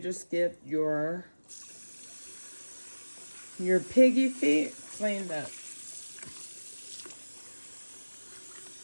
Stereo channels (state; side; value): inverted; both; correlation -1.00